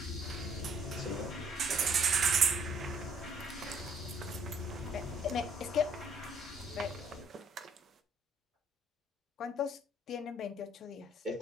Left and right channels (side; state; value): both; normal; correlation 0.63